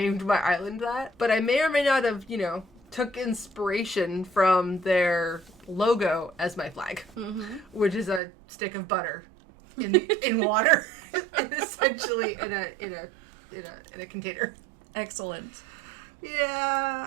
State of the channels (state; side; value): drops out; left; at 8.2 s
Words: my island that. But I may or may not have, took inspiration from their logo as my flag, which is a stick of butter in water, essentially in a container. Excellent. Yeah,